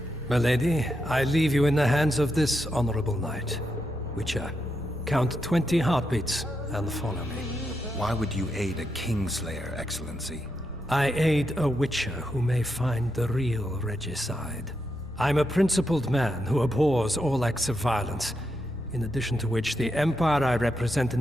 My lady, I leave you in the hands of this honorable knight. Witcher, count 20 heartbeats and follow me. Why would you aid a Kingslayer, Excellency? I aid a Witcher who may find the real regicide. I'm a principled man who abhors all acts of violence, in addition to which the Empire I represent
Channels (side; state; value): both; normal; correlation 0.83